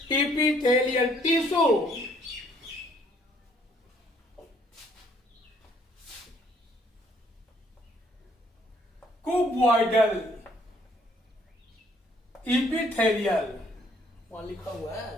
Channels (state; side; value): normal; both; correlation 0.64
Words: एपिथेलियल टिश्यू। कुबॉइडल एपिथेलियल वहां लिखा हुआ